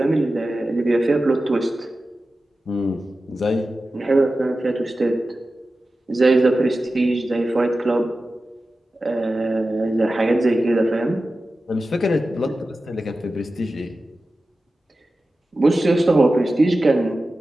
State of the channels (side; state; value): both; normal; correlation 0.94